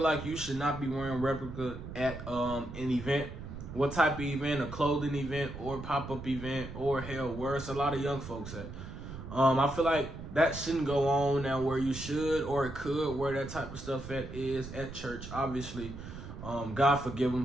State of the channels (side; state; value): right; noise; rumble, 10 dB below the sound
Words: you should not be wearing replica at an event. What type of event? A clothing event or pop-up event, or hell, where it's a lot of young folks at. I feel like that shouldn't go on now where you should, or it could, where that type of stuff is at church, obviously. God forgive